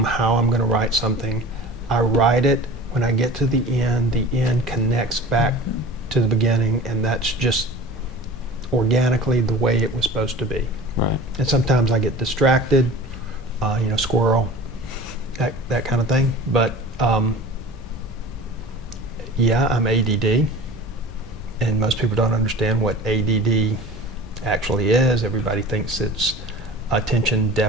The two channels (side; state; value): both; normal; correlation 0.39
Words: how I'm going to write something. I write it. When I get to the end connects back to the beginning, and that's just organically the way it was supposed to be. Right. And sometimes I get distracted, squirrel, that kind of thing. But yeah, I'm ADD, and most people don't understand what ADD actually is. Everybody thinks it's attention